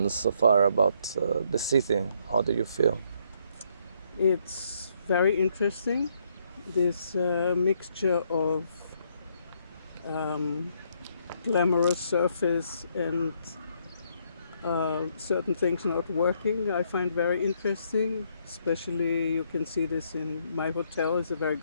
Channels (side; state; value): both; inverted; correlation -0.71